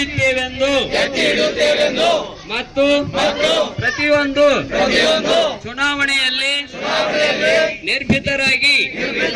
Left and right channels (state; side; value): identical; both; correlation 1.00